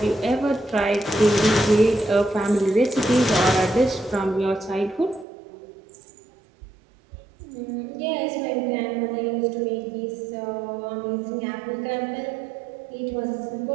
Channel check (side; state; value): left; drops out; at 5.2 s